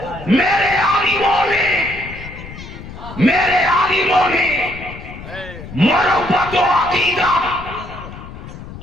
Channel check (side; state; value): left; noise; rumble, 13 dB below the sound